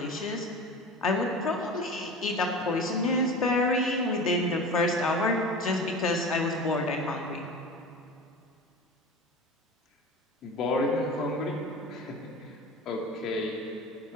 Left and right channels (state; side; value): normal; both; correlation 0.33